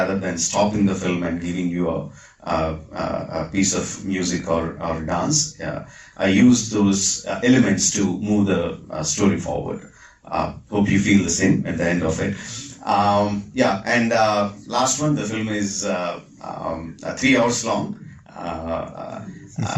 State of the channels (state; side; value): identical; both; correlation 1.00